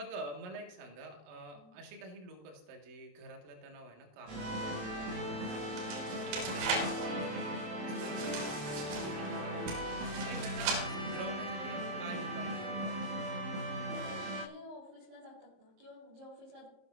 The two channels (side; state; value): left; late; 27 ms